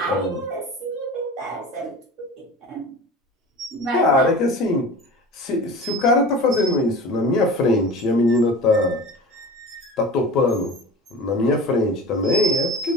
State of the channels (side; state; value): both; normal; correlation 0.36